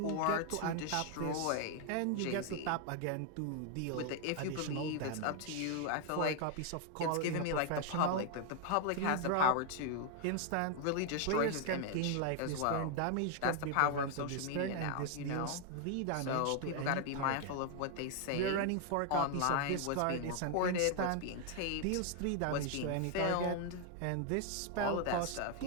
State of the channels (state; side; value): different; both; correlation 0.00